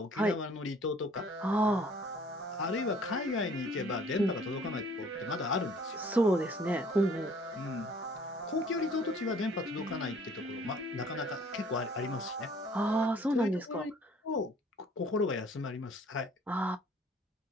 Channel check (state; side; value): normal; both; correlation 0.56